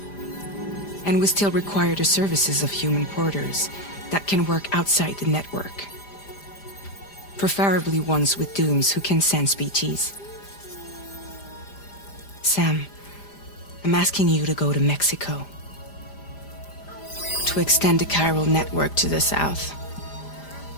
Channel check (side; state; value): right; late; 5.0 ms